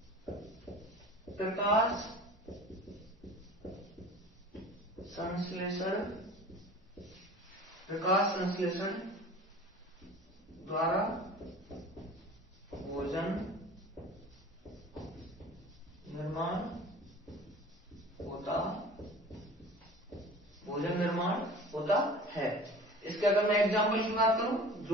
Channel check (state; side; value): normal; both; correlation 0.41